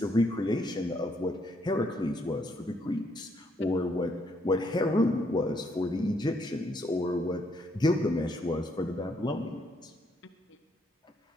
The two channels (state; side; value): normal; both; correlation 0.72